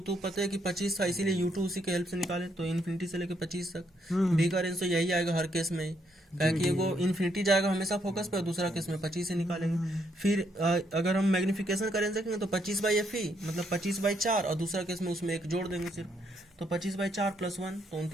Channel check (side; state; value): both; normal; correlation 0.74